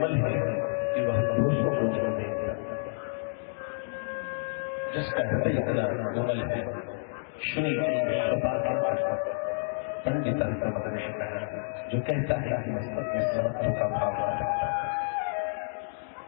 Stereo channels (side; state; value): right; silent; digital silence